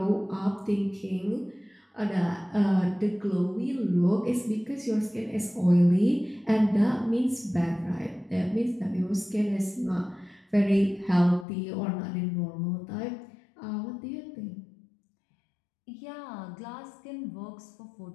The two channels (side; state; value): right; drops out; at 11.5 s